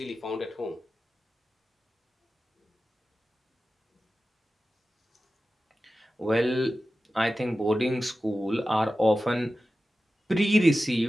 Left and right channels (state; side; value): normal; both; correlation 0.94